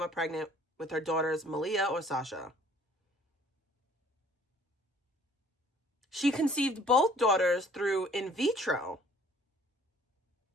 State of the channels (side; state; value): both; normal; correlation 0.56